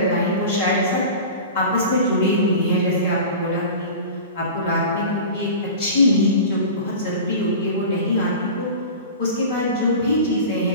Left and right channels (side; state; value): both; inverted; correlation -0.34